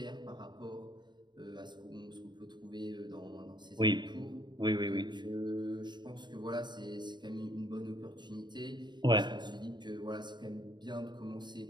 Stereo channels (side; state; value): left; late; 0.22 ms